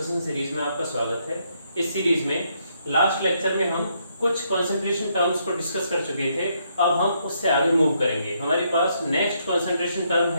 series में आपका स्वागत है। इस सीरीज में लास्ट लेक्चर में हम कुछ कंसंट्रेशन टर्म्स को डिस्कस कर चुके थे। अब हम उससे आगे मूव करेंगे। हमारे पास नेक्स्ट कंसंट्रेशन टर्म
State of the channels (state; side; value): inverted; both; correlation -0.74